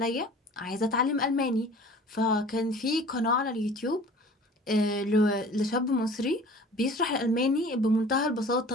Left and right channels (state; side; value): normal; both; correlation 0.45